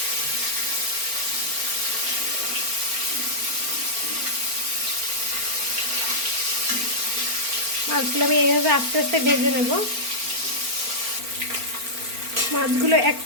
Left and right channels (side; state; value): left; late; 4.4 ms